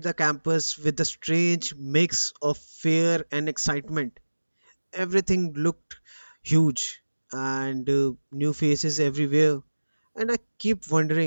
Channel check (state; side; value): inverted; both; correlation -1.00